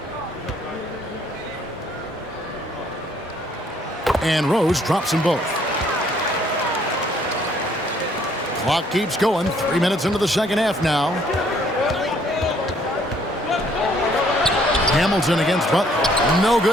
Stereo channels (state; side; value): normal; both; correlation 0.64